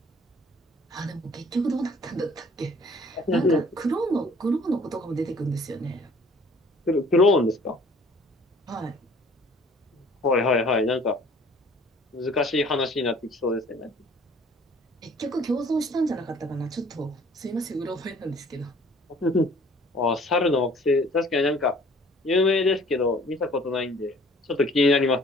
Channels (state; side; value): normal; both; correlation 0.54